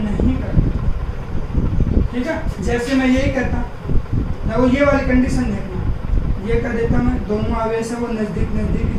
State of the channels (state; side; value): identical; both; correlation 1.00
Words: करता, ठीक है। जैसे मैं यही कहता, देखो ये वाली कंडीशन देखना, ये कर देता मैं, दोनों आवेश है वो नजदीक ही दे देता,